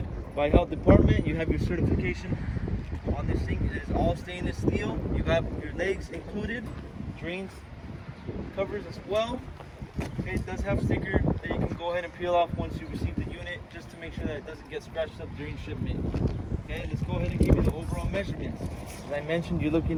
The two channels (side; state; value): both; identical; correlation 1.00